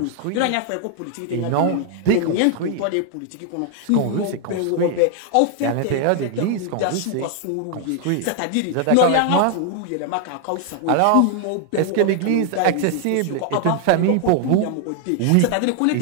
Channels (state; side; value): different; both; correlation 0.00